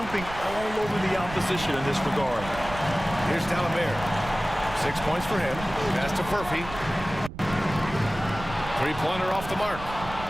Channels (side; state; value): right; noise; rumble, 12 dB below the sound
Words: all over the opposition in this regard. Here's D'Alembert. 6 points for him. Pass to Murphy. 3-pointer off the mark.